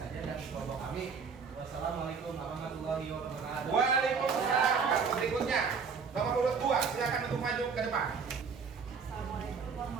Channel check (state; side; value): quieter; left; 5.7 dB